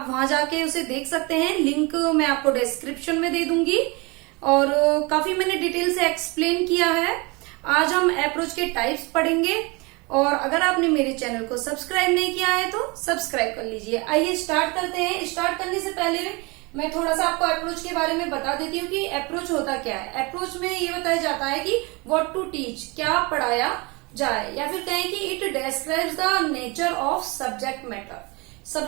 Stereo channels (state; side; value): quieter; left; 27.1 dB